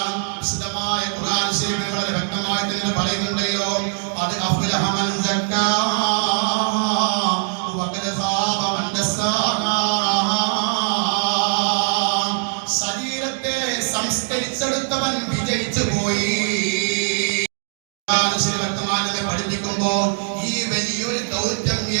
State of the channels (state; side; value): silent; left; 65 dB below the other